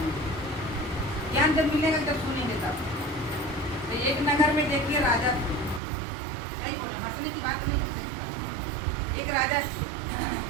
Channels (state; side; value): drops out; left; at 5.8 s